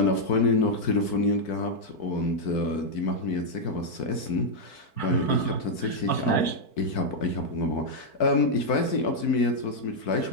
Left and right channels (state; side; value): late; right; 4.6 ms